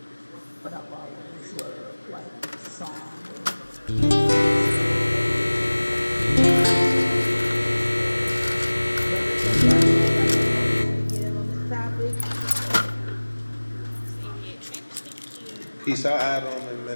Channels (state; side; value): inverted; both; correlation -1.00